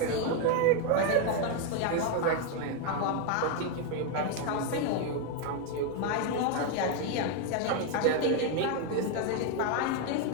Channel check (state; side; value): different; both; correlation 0.01